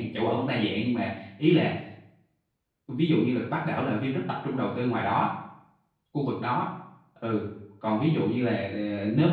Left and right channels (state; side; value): identical; both; correlation 1.00